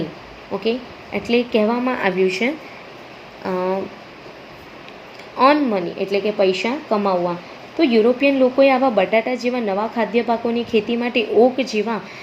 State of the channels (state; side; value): identical; both; correlation 1.00